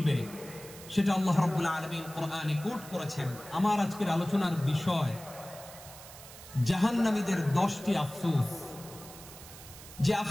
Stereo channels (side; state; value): right; noise; hiss, 16 dB below the sound